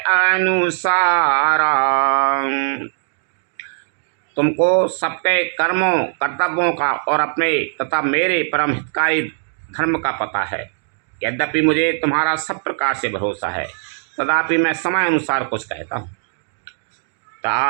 अनुसारा। तुमको सबके कर्मों कर्तव्यों का और अपने तथा मेरे परम हितकारी धर्म का पता है। यद्यपि मुझे तुम्हारा सब प्रकार से भरोसा है, तदापि मैं समय अनुसार कुछ कहता हूँ।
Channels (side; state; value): left; silent; digital silence